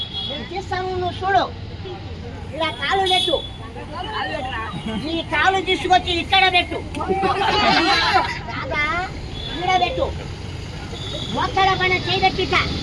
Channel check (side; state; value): both; identical; correlation 1.00